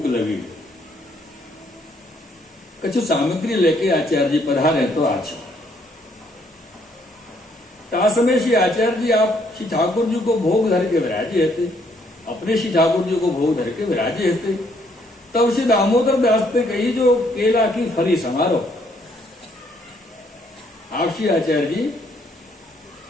लगी है, कछु सामग्री लेके आचार्य जी पधारे तो अच्छा। समय श्री आचार्य जी आप श्री ठाकुर जी को भोग धर के विराजे थे, अपने श्री ठाकुर जी को भोग धर के विराजे थे। तब श्री दामोदर दास ने कही जो केला की फली समारो। आप श्री आचार्य जी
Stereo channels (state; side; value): normal; both; correlation 0.68